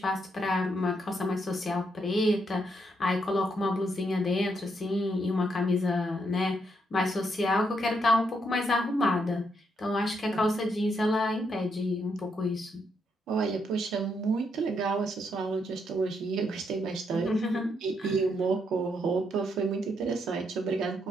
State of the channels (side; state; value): both; normal; correlation 0.77